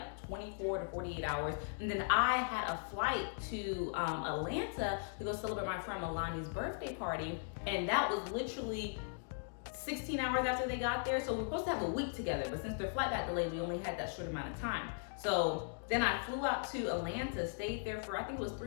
24 to 48 hours. And then I had a flight to Atlanta to go celebrate my friend Melania's birthday party. And that was literally 16 hours after they got there. So we were supposed to have a week together, but since their flight got delayed, we only had that short amount of time. So then I flew out to Atlanta, stayed there for, I think it was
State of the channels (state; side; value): silent; right; digital silence